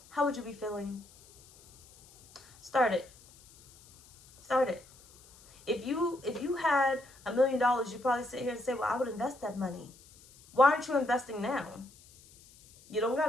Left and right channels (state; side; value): noise; left; hiss, 25 dB below the sound